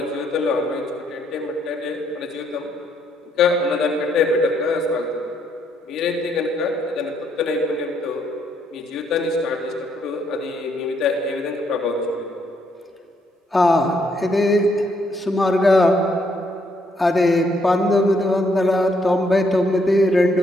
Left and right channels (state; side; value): normal; both; correlation 0.72